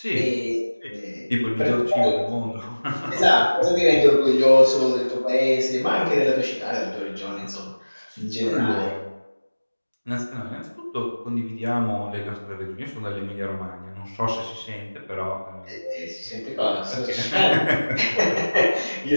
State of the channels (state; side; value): inverted; both; correlation -1.00